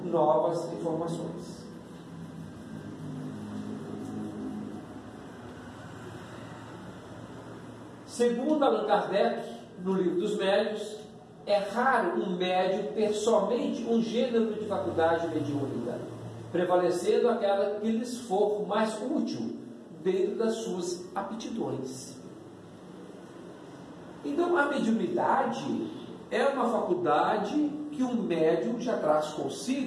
novas informações. Segundo Allan Kardec, no Livro dos Médiuns, é raro um médium ter somente um gênero de faculdade mediúnica, prevalecendo aquela que lhes for mais útil dentro das suas aptidões. Então, a mediunidade é uma faculdade que um médium já traz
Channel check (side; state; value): both; identical; correlation 1.00